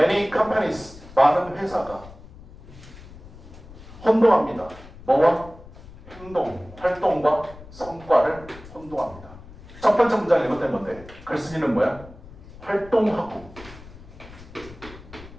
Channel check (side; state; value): left; noise; rumble, 18 dB below the sound